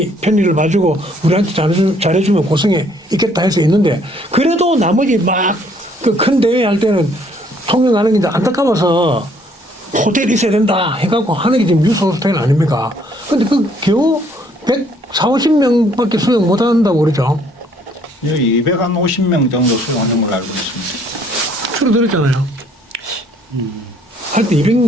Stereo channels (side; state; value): both; normal; correlation 0.63